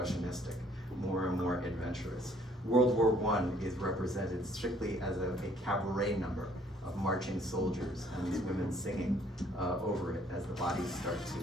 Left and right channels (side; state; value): both; normal; correlation 0.62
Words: more and more adventurous. World War I is represented strictly as a cabaret number, of marching soldiers and these women singing over it as the bodies start